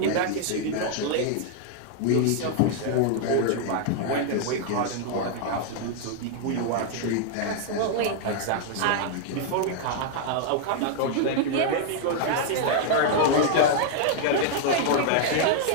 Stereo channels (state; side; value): different; both; correlation -0.01